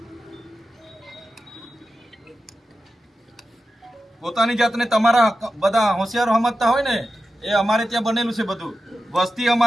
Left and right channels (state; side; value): normal; both; correlation 0.91